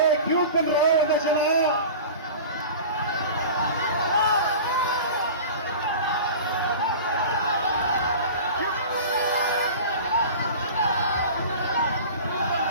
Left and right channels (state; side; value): inverted; both; correlation -0.37